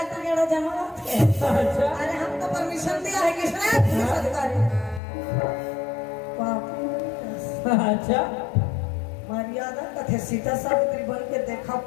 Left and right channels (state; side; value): drops out; right; at 5.0 s